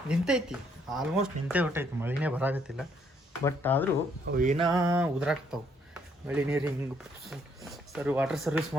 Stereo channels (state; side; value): normal; both; correlation 0.69